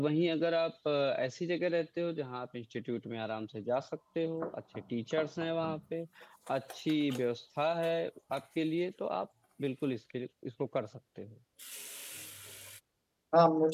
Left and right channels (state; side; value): identical; both; correlation 1.00